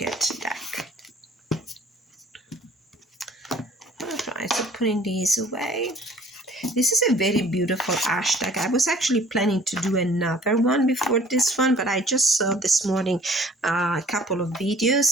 deck. Alright, so putting these away. This is a very beautiful hashtag. I was actually planning to do another one before this one, but I just saw this morning a couple of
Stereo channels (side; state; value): both; normal; correlation 0.54